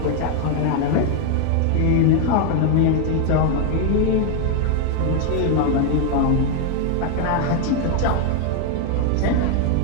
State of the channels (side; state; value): both; different; correlation 0.01